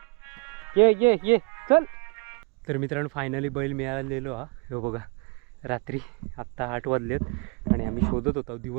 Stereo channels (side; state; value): left; quieter; 31.4 dB